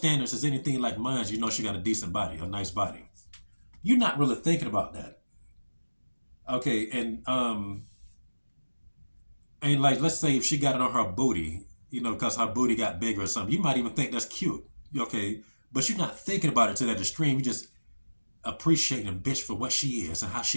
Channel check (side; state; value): both; inverted; correlation -1.00